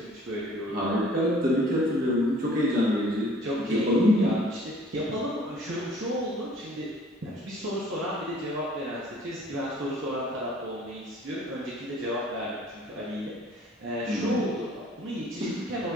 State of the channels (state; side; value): normal; both; correlation 0.54